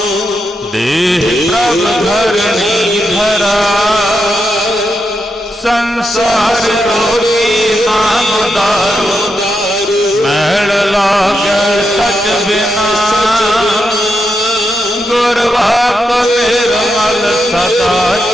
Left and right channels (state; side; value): normal; both; correlation 0.84